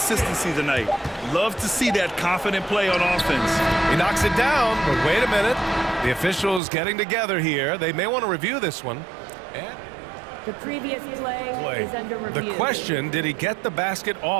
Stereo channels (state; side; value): drops out; left; at 6.6 s